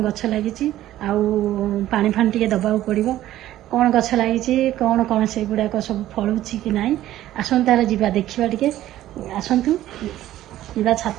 ଗଛ ଲାଗିଛି ଆଉ ପାଣି ଫାଣି ଟିକେ ଦବାକୁ ପଡ଼ିବ। କ'ଣ ଗଛ ଲାଗିଛି କ'ଣ କ'ଣ ସେଗୁଡ଼ାକ ସବୁ ଫଳୁଛି କି ନାହିଁ ଆସନ୍ତୁ ତାର ଯିବା ଦେଖିବା ଟିକେ। ଆସନ୍ତୁ ଯିବା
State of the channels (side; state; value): left; quieter; 13.8 dB